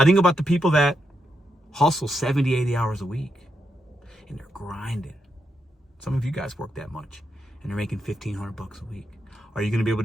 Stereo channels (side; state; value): both; normal; correlation 0.83